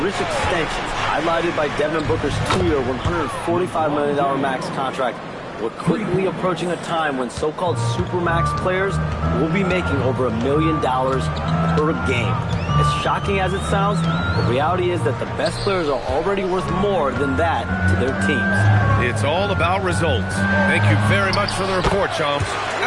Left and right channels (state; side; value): identical; both; correlation 1.00